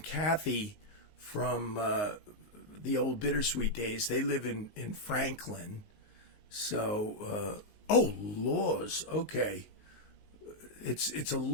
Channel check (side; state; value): right; late; 19 ms